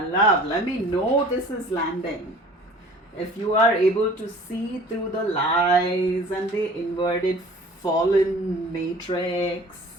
love, let me know this is landing. If you are able to see through the lies and the inverted fallen matrix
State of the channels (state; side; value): normal; both; correlation 0.47